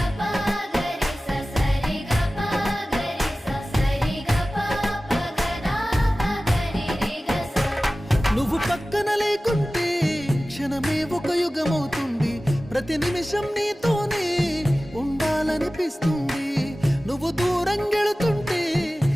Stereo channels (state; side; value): normal; both; correlation 0.96